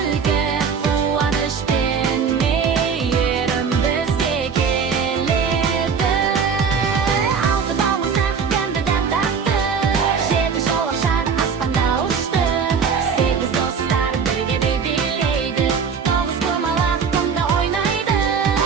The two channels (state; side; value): quieter; left; 6.1 dB